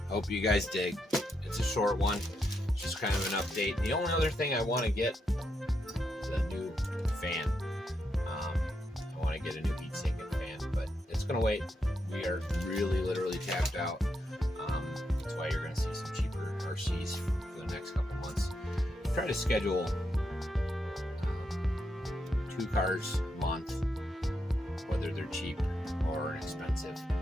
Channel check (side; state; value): both; normal; correlation 0.82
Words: hope you guys dig. It's a short one, it's just kind of an update. The only other thing I want to get is a new fan. I want to get a new heat sink and fan, but it's gonna wait. We are really literally tapped out. That's why you're going to see some cheaper RCs for the next couple months. Try to schedule 2 cars a month, whether they're cheap or expensive.